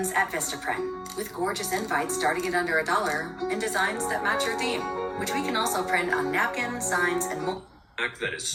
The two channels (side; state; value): both; identical; correlation 1.00